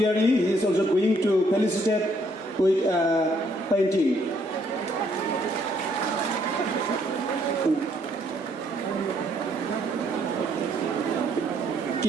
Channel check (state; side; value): normal; both; correlation 0.69